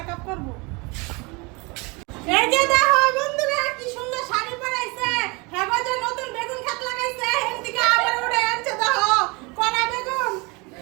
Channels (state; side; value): quieter; left; 27.6 dB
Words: করব। এই যে দেখো বন্ধুরা কি সুন্দর শাড়ি পরাইছে। হ্যাঁ যে নতুন বেগুন ক্ষেত লাগাইছে, এদিকে আবার উড়ে আনছে দেখো কড়া বেগুন।